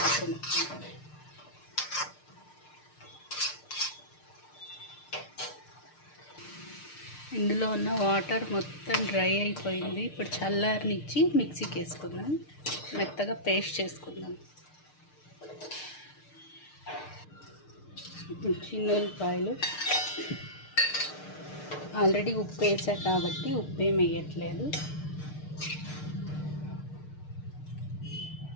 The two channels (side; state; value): right; late; 6.6 ms